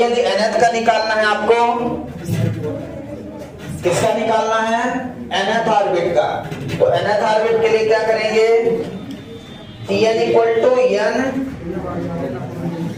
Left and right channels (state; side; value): identical; both; correlation 1.00